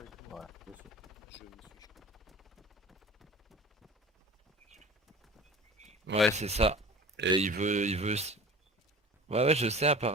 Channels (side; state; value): both; normal; correlation 0.39